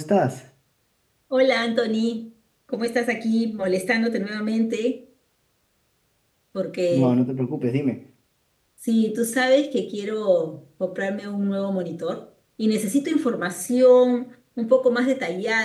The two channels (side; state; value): both; identical; correlation 1.00